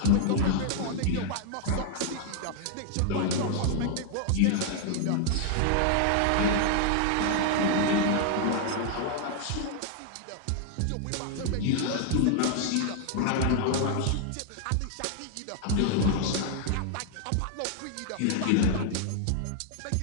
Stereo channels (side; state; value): both; different; correlation 0.00